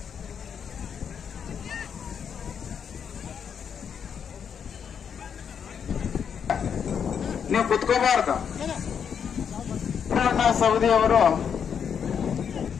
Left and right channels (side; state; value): right; quieter; 7.4 dB